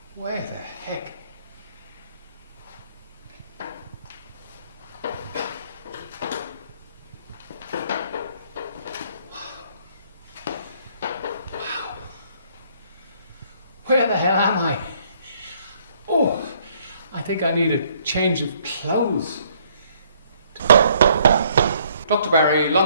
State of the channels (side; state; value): both; inverted; correlation -0.64